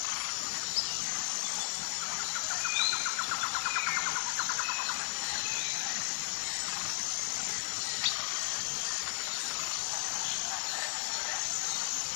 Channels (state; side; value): silent; right; 55 dB below the other